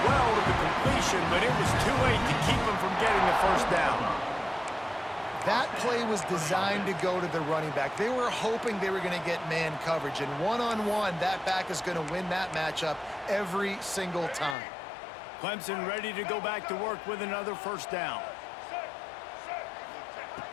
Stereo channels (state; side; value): drops out; right; at 14.6 s